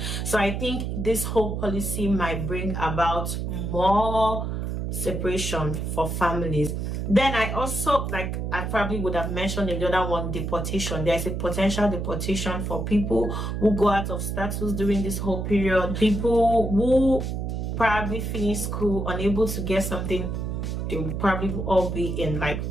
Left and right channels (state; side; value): noise; right; hum, 3 dB below the sound